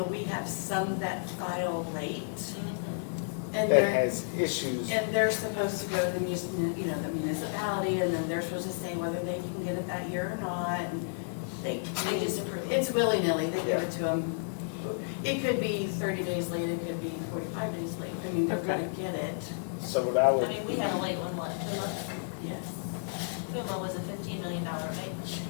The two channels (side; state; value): right; silent; digital silence